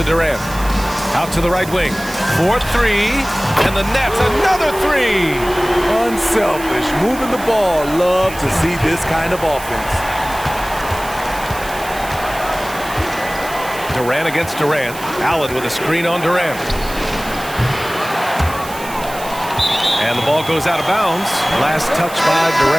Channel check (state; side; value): noise; right; hiss, 14 dB below the sound